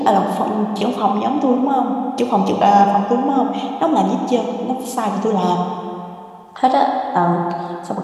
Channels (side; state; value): both; identical; correlation 1.00